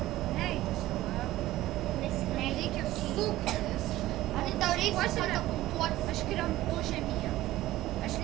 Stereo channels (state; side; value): quieter; left; 15.8 dB